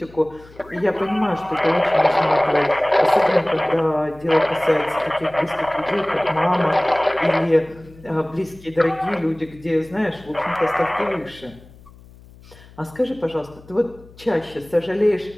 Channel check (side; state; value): left; noise; hum, 23 dB below the sound